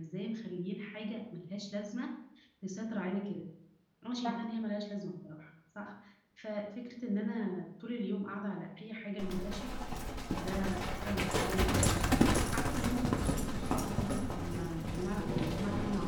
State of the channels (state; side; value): identical; both; correlation 1.00